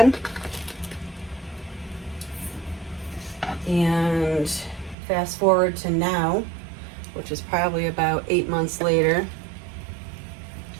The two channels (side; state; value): left; drops out; at 5.0 s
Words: And fast forward to now, which is probably about 8 months later,